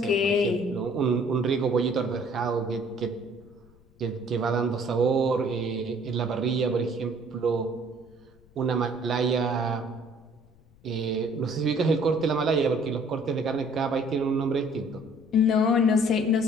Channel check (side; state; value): left; noise; rumble, 28 dB below the sound